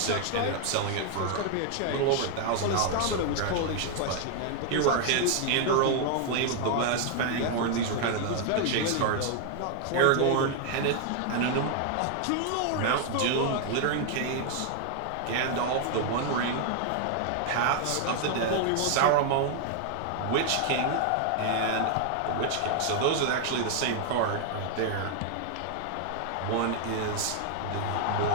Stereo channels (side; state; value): both; different; correlation 0.00